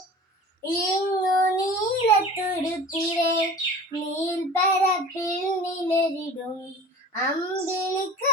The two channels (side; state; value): both; normal; correlation 0.38